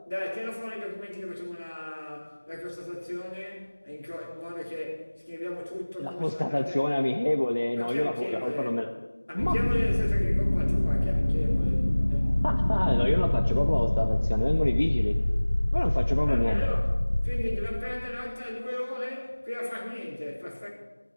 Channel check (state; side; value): inverted; both; correlation -1.00